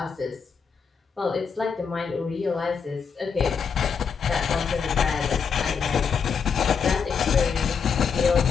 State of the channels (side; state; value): right; quieter; 6.2 dB